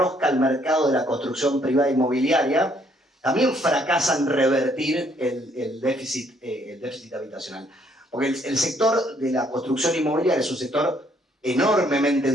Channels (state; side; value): normal; both; correlation 0.67